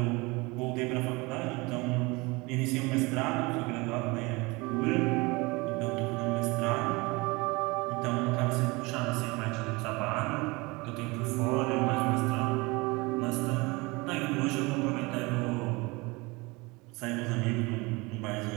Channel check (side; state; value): left; quieter; 24.7 dB